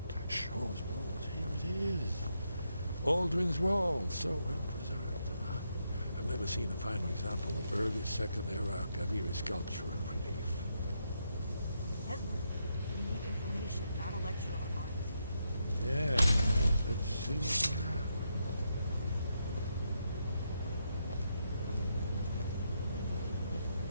Shaw's bones, here it is. Aldrin's Wall, so well preserved. Huh? I've never seen a finer example of early Second Era Akaviri sculpture and relief. Esbern, we need information, not a lecture on art. Yes, let's see what we have.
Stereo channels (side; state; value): both; inverted; correlation -0.80